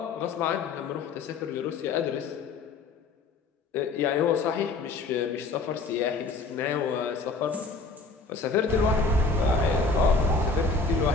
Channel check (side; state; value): right; quieter; 3.8 dB